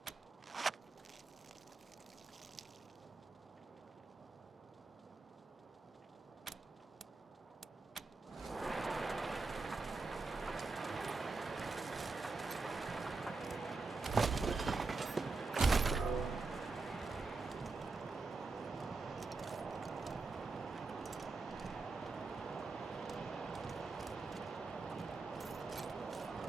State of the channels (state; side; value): quieter; left; 4.0 dB